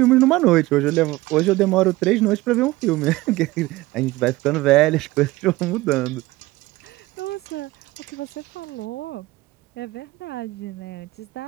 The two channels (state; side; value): quieter; left; 19.0 dB